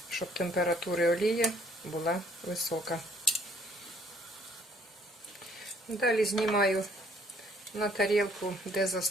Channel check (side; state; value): both; normal; correlation 0.61